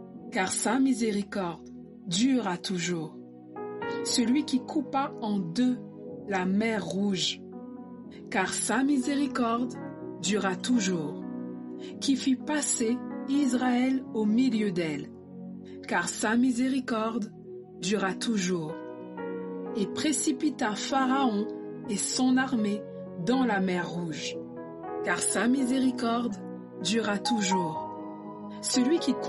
car sa miséricorde durera toujours. Celui qui coupa en deux la mer Rouge, car sa miséricorde durera toujours, qui fit passer Israël au milieu d'elle, car sa miséricorde durera toujours, et précipita Pharaon et son armée dans la mer Rouge, car sa miséricorde durera toujours. celui qui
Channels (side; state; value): both; identical; correlation 1.00